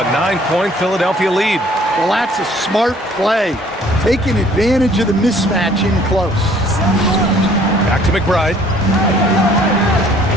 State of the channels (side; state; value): both; normal; correlation 0.58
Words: a 9-point Philadelphia lead. Well, that's a smart play, taking advantage of the mismatch in close. Back to McBride.